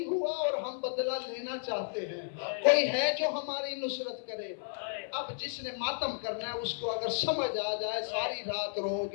ہوا اور ہم بدلہ لینا چاہتے ہیں. کوئی ہے جو ہماری نصرت کرے؟ اب جس نے ماتم کرنا ہے اس کو اگر سمجھ آ جائے ساری رات رو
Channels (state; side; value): silent; right; 56 dB below the other